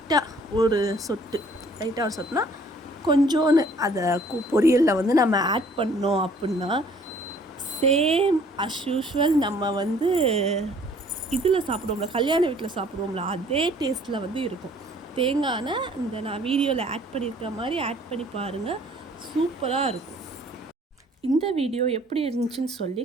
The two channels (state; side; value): normal; both; correlation 0.57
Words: ஒரு சொட்டுனா கொஞ்சோன்னு அதை பொரியலில் வந்து நம்ம ஆட் பண்ணோம் அப்படின்னா சேம் அஸ் யூஷுவல் நம்ம வந்து இதில் சாப்பிடுவோம்ல, கல்யாண வீட்டில் சாப்பிடுவோம்ல, அதே டேஸ்ட்டில் வந்து இருக்கும். தேங்காய் எண்ணெய் இந்த நான் வீடியோவில் ஆட் பண்ணியிருக்க மாதிரி ஆட் பண்ணி பாருங்கள், சூப்பராக இருக்கும். இந்த வீடியோ எப்படி இருந்துச்சுன்னு சொல்லி